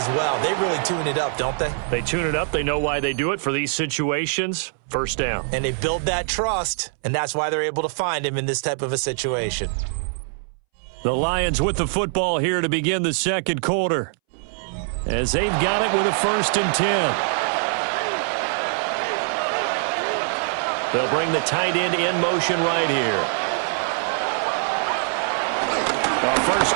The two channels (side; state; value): left; silent; 63 dB below the other